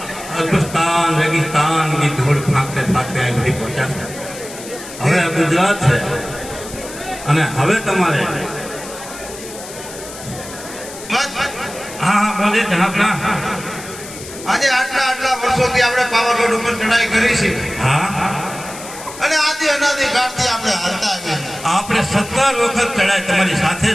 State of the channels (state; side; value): noise; left; hiss, 13 dB below the sound